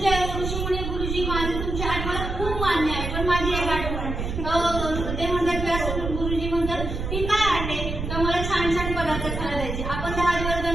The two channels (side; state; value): right; noise; rumble, 4 dB below the sound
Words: ऋषीमुनी गुरुजी माझे तुमची आठ मला खूप मान्य आहे, पण माझी एक आठवण ते म्हणतात व्यास गुरुजी म्हणतात की काय आटे तर मला छान छान पदार्थ खायला द्यायचे. आपण 10 दिवस